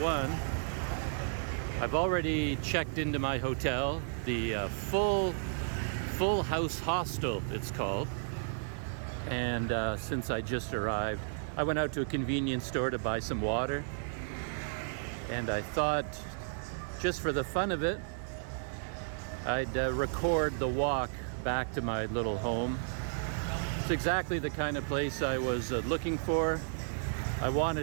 I've already checked into my hotel, the full House Hostel it's called. And since I just arrived, I went out to a convenience store to buy some water. And I thought, just for the fun of it, I'd record the walk back to my little home. It's exactly the kind of place I was looking for. I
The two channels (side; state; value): left; silent; digital silence